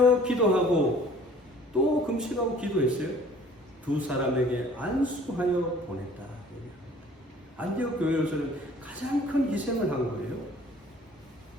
기도하고, 또 금식하고 기도했어요. 두 사람에게 안수하여 보냈다. 안디옥 교회로서는 가장 큰 희생을 한 거예요.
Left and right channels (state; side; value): normal; both; correlation 0.52